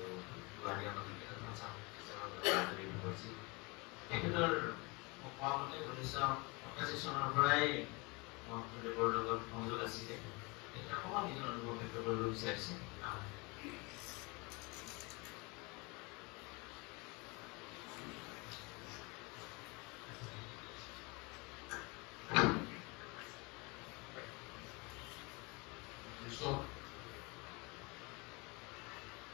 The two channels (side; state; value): right; quieter; 27.5 dB